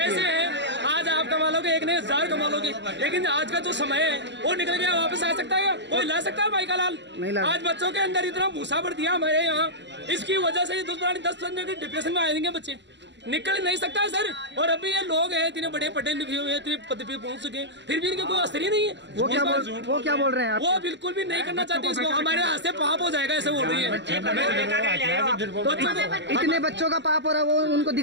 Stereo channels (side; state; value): left; late; 0.52 ms